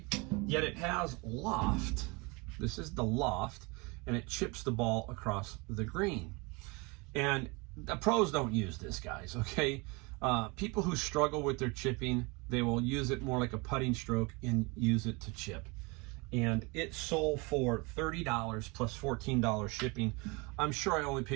Yet it has loft. This is the loft, and it chips the ball across the green. And the pros don't use this, guys, okay? People who struggle with their chipping, they will use it more like a putting stroke and use it to chip. And it sold for $30 plus $14 shipping. I'm sure I only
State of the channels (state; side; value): quieter; left; 27.8 dB